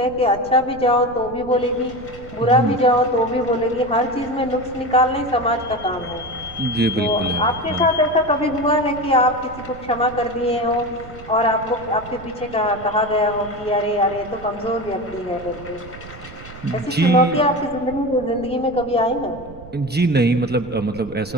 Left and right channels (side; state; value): right; noise; rumble, 17 dB below the sound